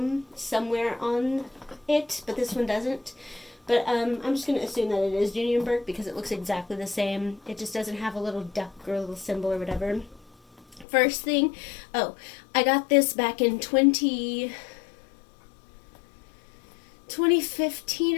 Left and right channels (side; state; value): right; drops out; at 10.9 s